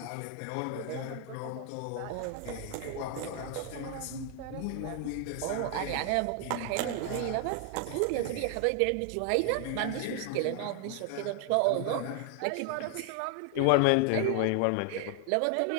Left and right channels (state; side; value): different; both; correlation 0.00